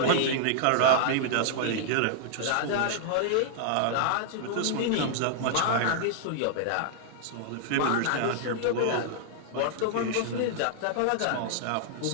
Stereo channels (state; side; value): different; both; correlation -0.01